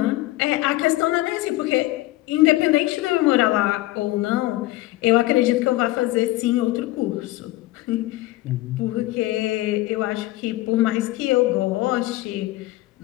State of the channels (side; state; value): right; quieter; 18.1 dB